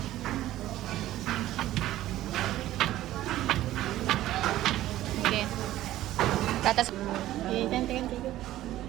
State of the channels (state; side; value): quieter; left; 14.5 dB